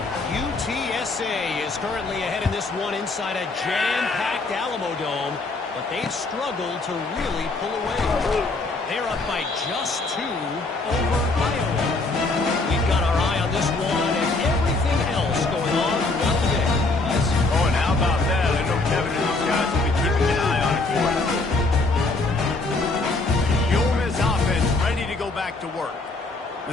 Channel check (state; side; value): quieter; right; 3.3 dB